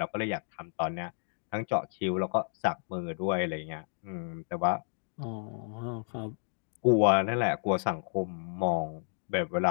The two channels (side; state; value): right; silent; 57 dB below the other